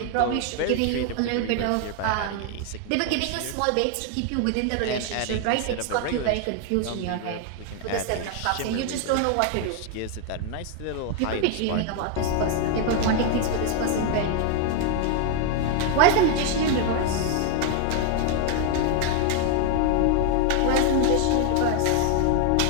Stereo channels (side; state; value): both; different; correlation 0.00